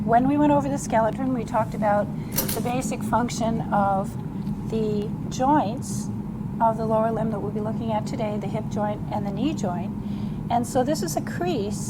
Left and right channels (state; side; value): identical; both; correlation 1.00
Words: when we went over the skeleton, we talked about the basic function of the joints of the lower limb that we'll be looking at today, the hip joint and the knee joint. And so this is a